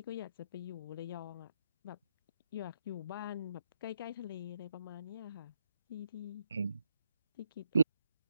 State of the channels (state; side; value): inverted; both; correlation -0.81